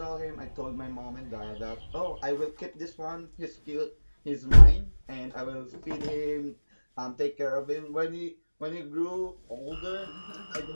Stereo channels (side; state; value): both; inverted; correlation -1.00